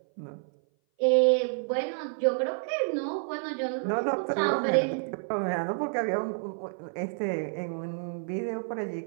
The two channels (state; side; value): silent; left; 57 dB below the other